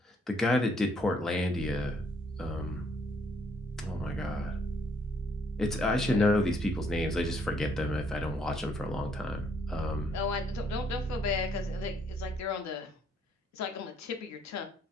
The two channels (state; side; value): normal; both; correlation 0.68